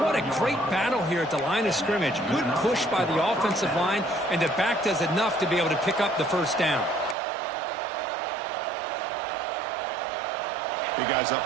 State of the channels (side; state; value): left; drops out; at 7.2 s